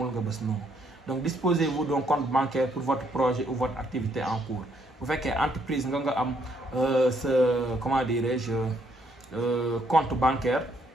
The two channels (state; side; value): normal; both; correlation 0.71